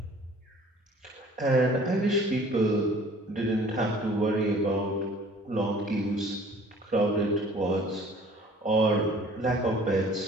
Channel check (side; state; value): both; normal; correlation 0.51